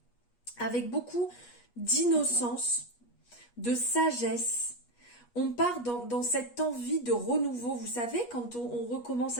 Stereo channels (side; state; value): right; late; 8.4 ms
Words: avec beaucoup d'innocence, de sagesse. On part dans cette envie de renouveau. Vous savez, quand on recommence